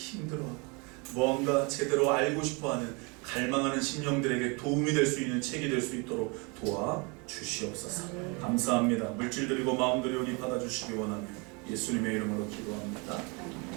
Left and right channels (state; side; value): quieter; left; 30.6 dB